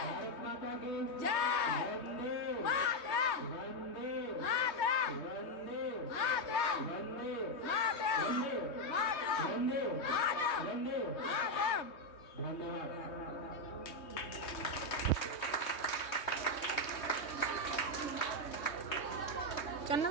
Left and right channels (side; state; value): right; late; 3.2 ms